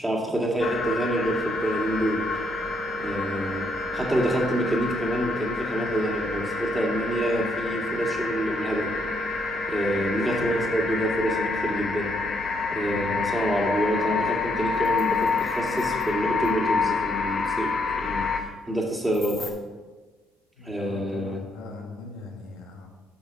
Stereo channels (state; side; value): normal; both; correlation 0.74